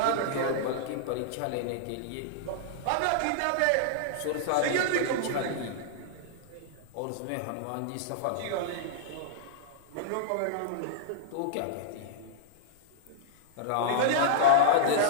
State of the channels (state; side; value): different; both; correlation -0.02